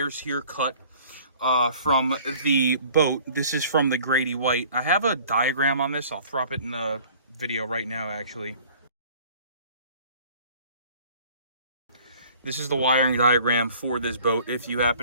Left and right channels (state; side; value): inverted; both; correlation -0.50